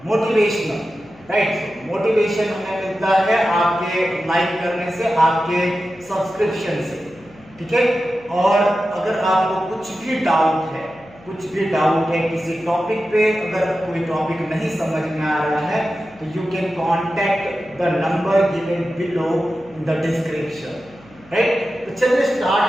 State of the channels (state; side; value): noise; left; hum, 25 dB below the sound